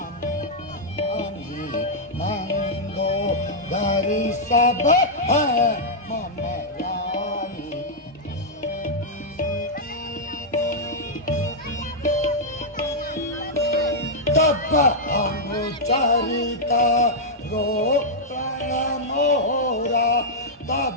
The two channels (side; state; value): both; normal; correlation -0.06